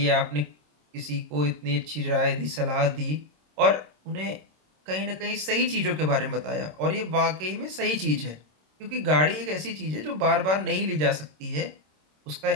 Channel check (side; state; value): left; late; 26 ms